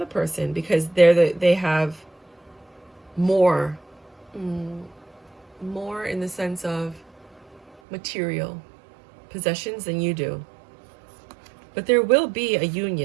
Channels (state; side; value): drops out; left; at 7.8 s